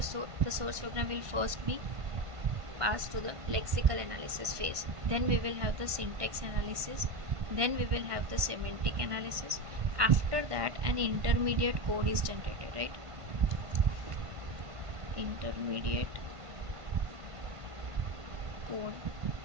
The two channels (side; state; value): left; late; 1.5 ms